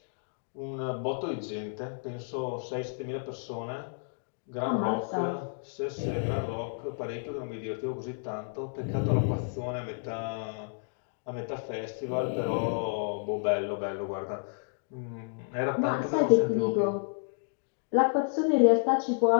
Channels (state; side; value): silent; right; digital silence